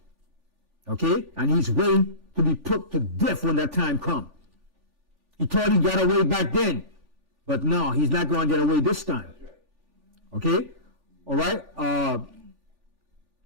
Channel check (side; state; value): left; late; 3.4 ms